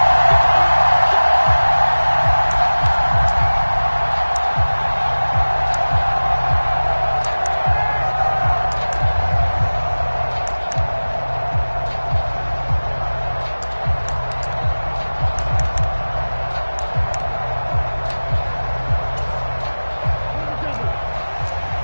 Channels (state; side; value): inverted; both; correlation -1.00